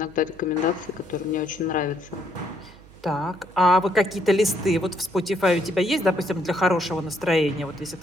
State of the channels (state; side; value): noise; right; hum, 23 dB below the sound